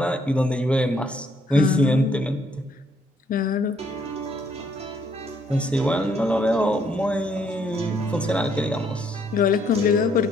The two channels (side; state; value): both; normal; correlation 0.68